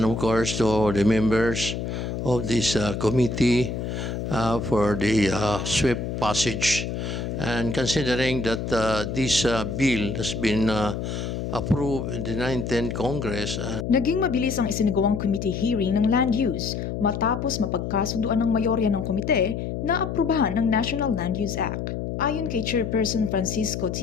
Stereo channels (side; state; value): left; noise; hum, 4 dB below the sound